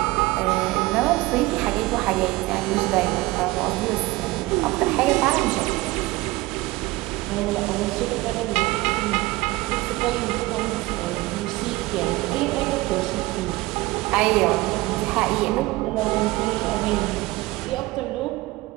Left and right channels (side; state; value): left; quieter; 20.3 dB